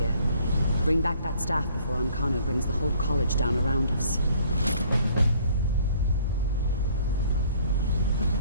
Bring back that staff before Ancano brings the whole college down around us.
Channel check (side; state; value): both; inverted; correlation -0.59